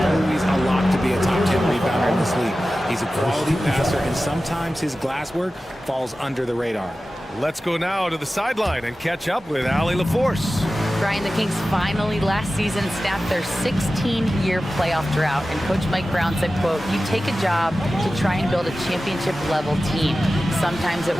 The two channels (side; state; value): both; normal; correlation 0.95